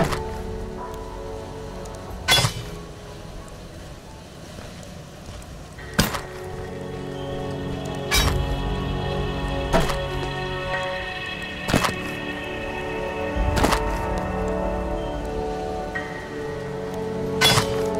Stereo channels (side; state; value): both; identical; correlation 1.00